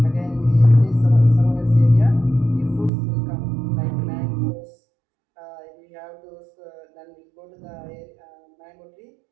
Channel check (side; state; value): left; drops out; at 2.9 s